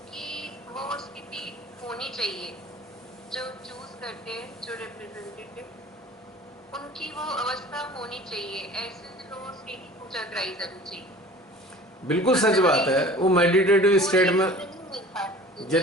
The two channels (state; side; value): normal; both; correlation 0.44